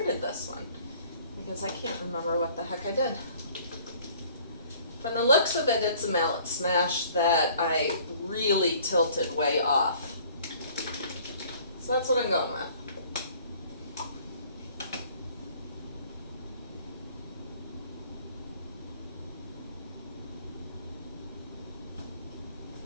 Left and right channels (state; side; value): inverted; both; correlation -0.54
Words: this one, because I can't remember what the heck I did. From the looks of it, it's a mallet smash that I really tilted way off. So that's what I'm going with.